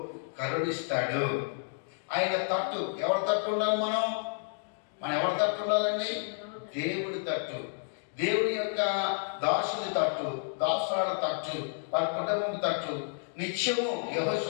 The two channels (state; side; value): silent; right; digital silence